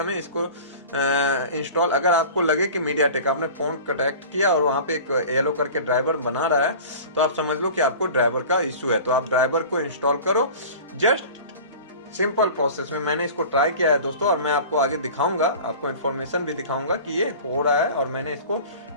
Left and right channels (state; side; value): inverted; both; correlation -0.39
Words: इसको इंस्टॉल, अगर आपको लगे कि मीडियाटेक आपने फ़ोन कनेक्ट किया और वहाँ पे एक येलो करके ड्राइवर बना रहा है, तो आप समझ लो कि आपको ड्राइवर का इशू है। तो आप ड्राइवर को इंस्टॉल करो, जस्ट सिंपल प्रोसेस में। मैंने इसको ट्राई किया है दोस्तों, और मैं आपको आगे दिखाऊंगा, आपको इन्फॉर्मेशन भी दिखाऊंगा कि ये हो रहा है, और मैंने इसको